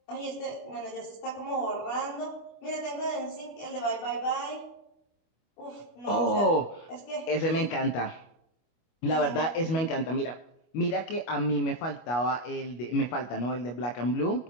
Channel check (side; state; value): right; late; 25 ms